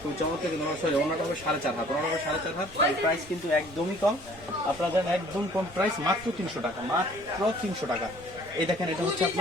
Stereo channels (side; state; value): both; normal; correlation 0.54